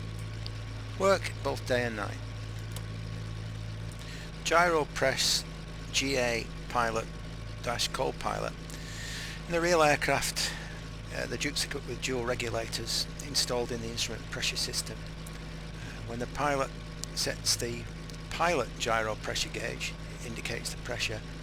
Work both day and night. Gyro press GA pilot - co-pilot. In the real aircraft, the Duke's equipped with dual regulators installed in the instrument pressure system. When the pilot sets the pilot gyro pressure gauge, it indicates the pressure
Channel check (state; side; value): identical; both; correlation 1.00